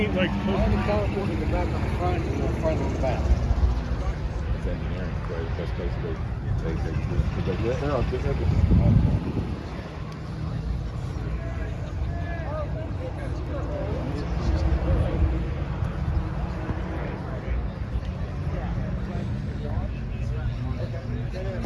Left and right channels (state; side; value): identical; both; correlation 1.00